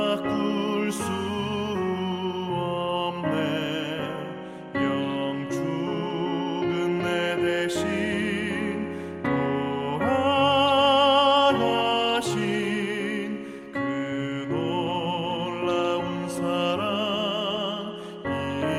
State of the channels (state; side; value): identical; both; correlation 1.00